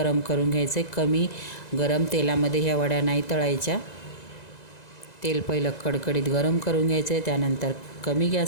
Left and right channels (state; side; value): late; right; 1.9 ms